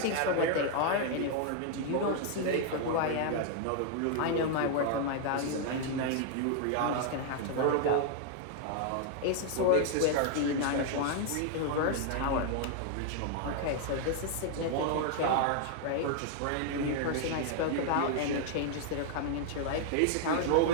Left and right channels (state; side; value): different; both; correlation 0.00